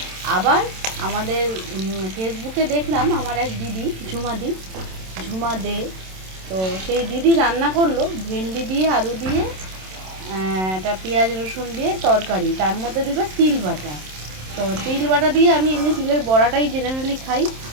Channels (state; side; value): late; left; 27 ms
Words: আবার আমাদের ফেসবুকে দেখলাম আমার এক দিদি ঝুমা দে, তো সেই দিদি রান্না করলো ভেন্ডি দিয়ে আলু দিয়ে একটা পেঁয়াজ রসুন দিয়ে তরকারি, তার মধ্যে দিল তিল বাটা। তো তিল বাটা দিয়ে আমি এমনি তিলের বড়াটাই জেনারেলি খাই,